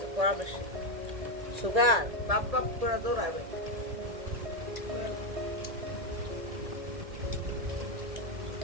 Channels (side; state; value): left; late; 1.8 ms